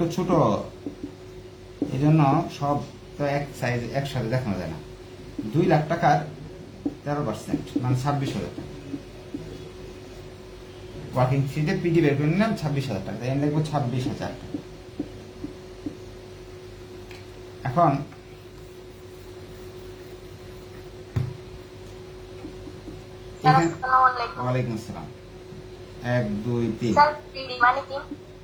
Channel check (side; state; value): both; identical; correlation 1.00